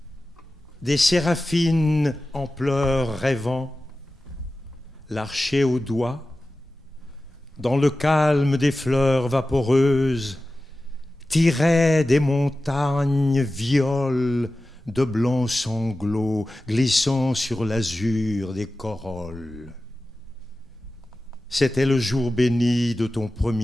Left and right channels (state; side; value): normal; both; correlation 0.95